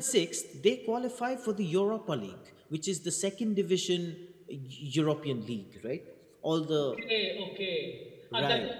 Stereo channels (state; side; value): identical; both; correlation 1.00